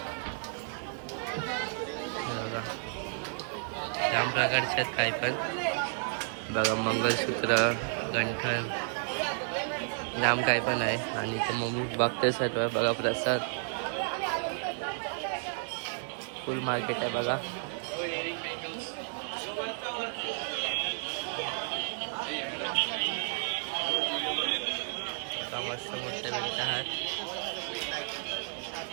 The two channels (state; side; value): silent; left; digital silence